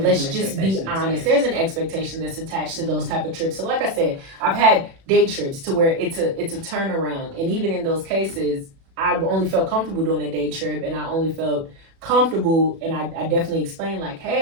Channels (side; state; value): left; late; 36 ms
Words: let's just be honest. There's an expectation that's attached to those type of trips. So like I said, I've had day trips to where it's a turnaround. And even in those cases, I only felt comfortable doing a day trip, and I only felt comfortable, and I definitely explained like,